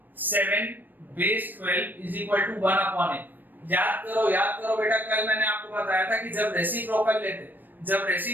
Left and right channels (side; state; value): left; late; 0.090 ms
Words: 7 base 12 is equal to 1 upon a। याद करो बेटा, कल मैंने आपको बताया था कि जब रेसिप्रोकल